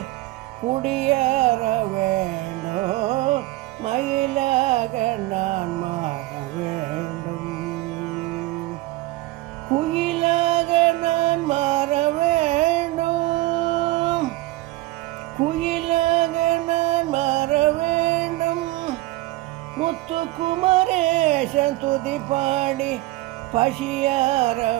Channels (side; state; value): left; quieter; 19.2 dB